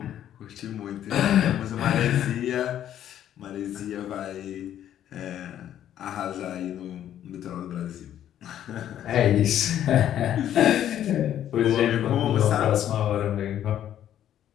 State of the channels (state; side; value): quieter; right; 11.0 dB